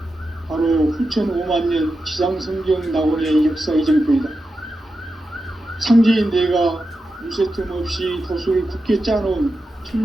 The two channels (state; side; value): normal; both; correlation 0.90